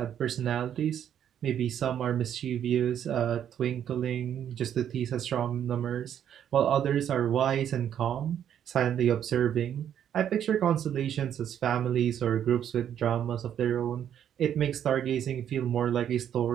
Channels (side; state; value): left; quieter; 9.6 dB